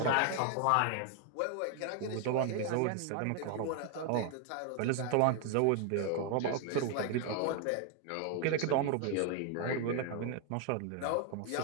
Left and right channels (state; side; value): different; both; correlation 0.00